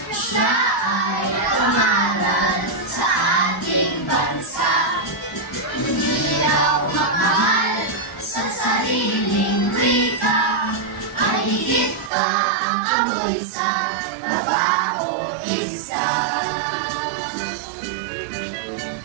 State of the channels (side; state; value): left; drops out; at 12.1 s